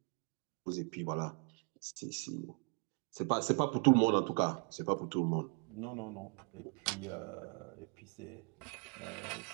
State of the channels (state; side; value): quieter; left; 36.1 dB